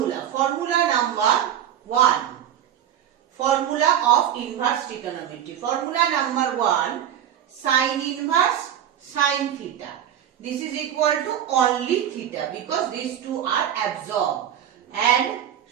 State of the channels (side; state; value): left; quieter; 10.3 dB